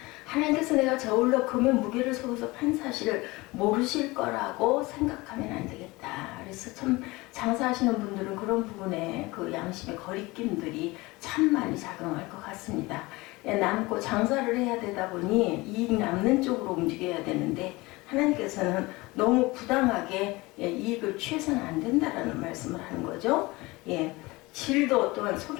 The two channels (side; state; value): right; quieter; 22.2 dB